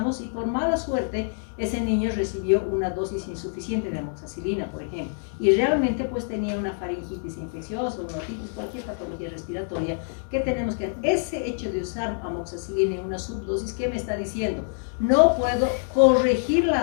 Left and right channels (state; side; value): silent; right; digital silence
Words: y por mala suerte ese niño recibió una dosis insuficiente de amoxicilina, por ejemplo, y realmente pues tenía una faringitis infecciosa, una otitis, cualquier patología respiratoria que tenemos que... Ese hecho de usar amoxicilina en una subdosis, ¿qué me está diciendo? No puedo corregir